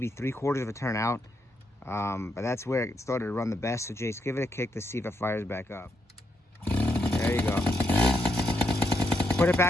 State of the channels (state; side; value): normal; both; correlation 0.80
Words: 3/4 of a turn out, but that's where it started to run the best. So Jayce, give it a kick to see if it fires back up. There you go. Put it